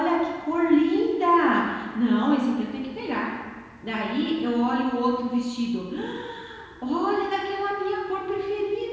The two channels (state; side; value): identical; both; correlation 1.00